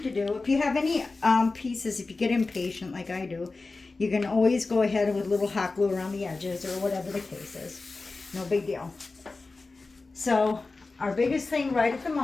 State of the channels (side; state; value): right; quieter; 3.7 dB